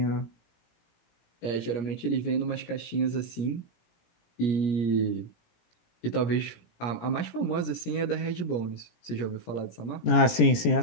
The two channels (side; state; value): right; late; 17 ms